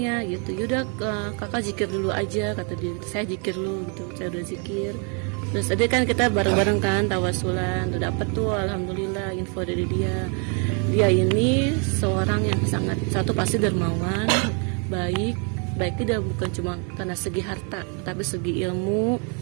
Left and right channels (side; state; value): left; quieter; 37.0 dB